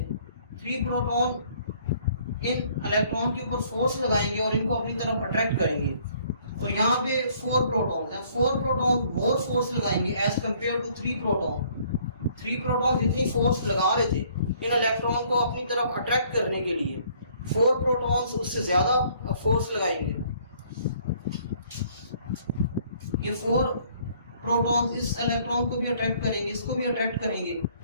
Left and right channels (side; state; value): both; inverted; correlation -0.61